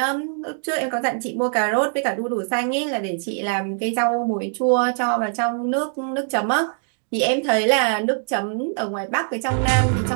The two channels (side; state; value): left; silent; digital silence